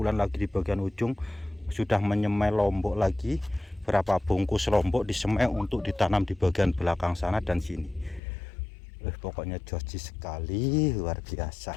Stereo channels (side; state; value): right; drops out; at 8.2 s